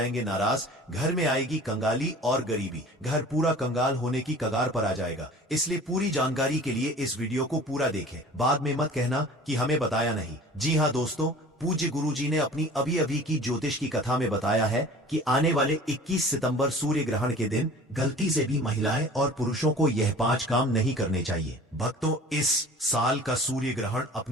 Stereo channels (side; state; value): both; normal; correlation 0.44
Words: नाराज। घर में आएगी कंगाली और गरीबी, घर पूरा कंगाल होने की कगार पर आ जाएगा। इसलिए पूरी जानकारी के लिए इस वीडियो को पूरा देखें, बाद में मत कहना कि हमें बताया नहीं। जी हाँ दोस्तों, पूज्य गुरुजी ने अपनी अभी अभी की ज्योतिष की कथा में बताया है कि आने वाले 21 सितंबर सूर्य ग्रहण के दिन गलती से भी महिलाएं और पुरुषों को यह 5 काम नहीं करने चाहिए। भक्तों, इस साल का सूर्य ग्रहण